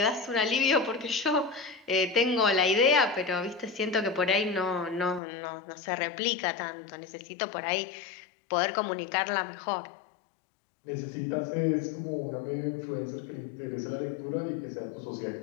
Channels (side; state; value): right; drops out; at 5.2 s